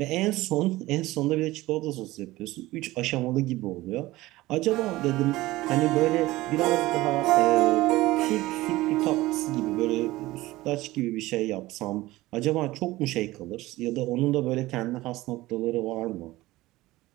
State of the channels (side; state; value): left; quieter; 18.3 dB